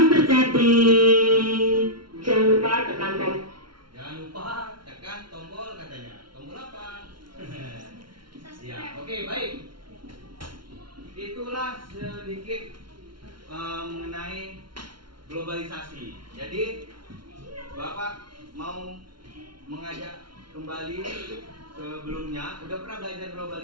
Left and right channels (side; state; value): left; late; 0.73 ms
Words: Jangan lupa tekan tombol. Jangan lupa tekan tombol katanya. Tombol apa? Ya, oke, baik. Itulah sedikit mengenai globalisasi. Jadi Bapak mau mengajak kembali sebelumnya. Udah pernah belajar